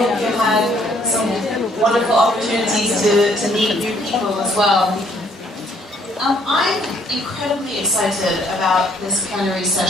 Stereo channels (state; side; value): normal; both; correlation 0.65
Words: you had some wonderful opportunities to meet new people as well. I'm incredibly excited about this plenary